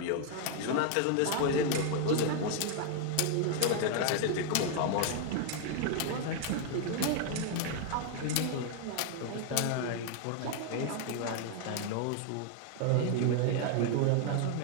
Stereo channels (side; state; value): both; different; correlation 0.00